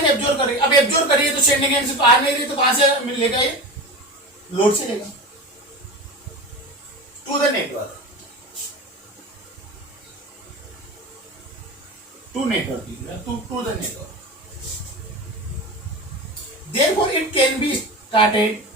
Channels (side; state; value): both; normal; correlation 0.27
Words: एब्जॉर्ब कर रही है, अब एब्जॉर्ब कर रही है तो सेंडिंग एंड से तो आ नहीं रही, तो कहां से मिलेगा, ये लोड से लेगा to the network, to network, to the network. Therefore, it can be started